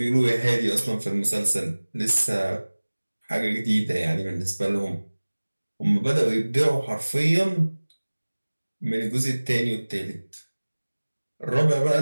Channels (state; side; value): inverted; both; correlation -1.00